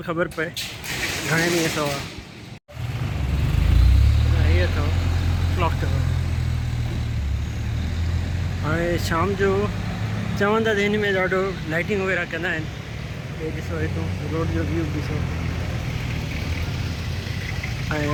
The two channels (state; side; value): identical; both; correlation 1.00